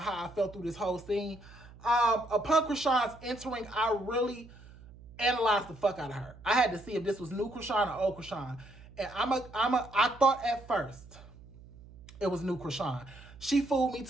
how I felt through this whole scene. Upon Chrisean's entering, I really analyzed the fuck out of her. I had to see if this was new Chrisean or old Chrisean. And I thought at first it was new Chrisean. She fooled me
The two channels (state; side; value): noise; right; hum, 20 dB below the sound